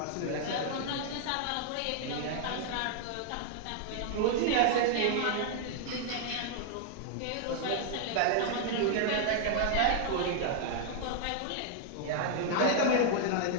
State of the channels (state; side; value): different; both; correlation 0.00